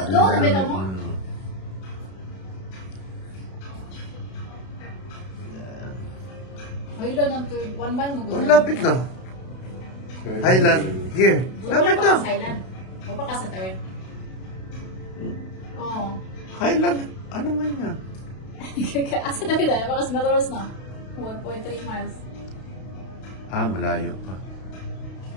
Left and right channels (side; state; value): right; late; 32 ms